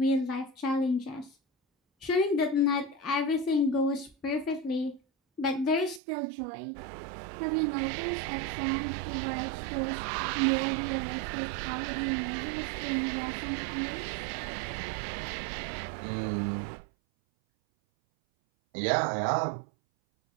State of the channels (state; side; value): drops out; left; at 6.0 s